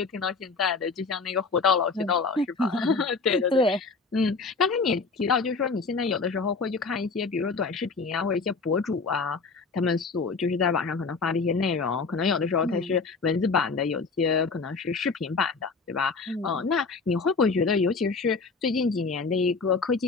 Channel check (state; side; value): quieter; right; 4.4 dB